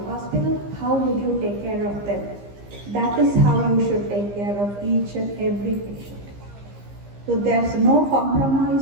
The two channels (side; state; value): left; late; 15 ms